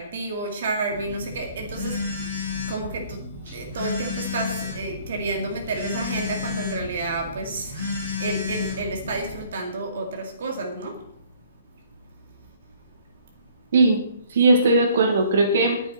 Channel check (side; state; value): both; inverted; correlation -0.59